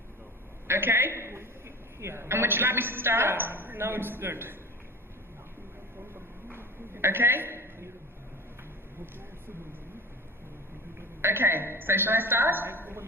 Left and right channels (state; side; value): normal; both; correlation 0.34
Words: Okay. Yeah. And would you like me to start? Yeah, now it's good. Okay. Okay, so shall I start?